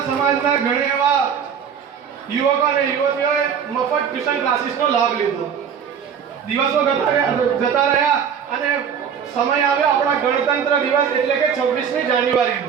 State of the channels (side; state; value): left; quieter; 7.5 dB